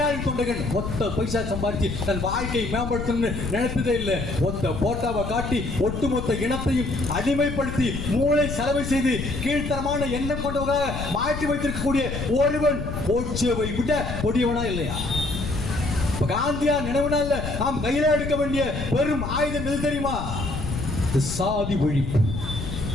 தொண்டகன். ஒத்த பைசா சம்பாதிச்சு தன் வாழ்க்கையை மேம்படுத்தணும்னு நினைத்ததே இல்லை. ஒத்த போட்டாவை காட்டி ஒட்டுமொத்த இனத்தையும் அடிமைப்படுத்தி மூளை செலவு செய்து கீழ்த்தரமான எண்ணம் கொண்டவர்களாக மாற்றி வைத்திருக்கக்கூடிய ஒருவன் கோட்சேவை விட கொடியவனா இல்லையா? காந்தியார் நினைவு நாள்ல நாம் கையில எடுக்க வேண்டிய பெரும் ஆயுதம் எது தெரியுமா? சாதி ஒழிப்பு.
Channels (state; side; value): noise; left; rumble, 5 dB below the sound